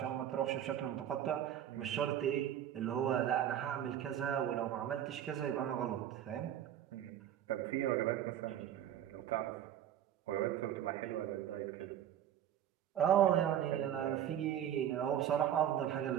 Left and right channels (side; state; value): left; quieter; 10.8 dB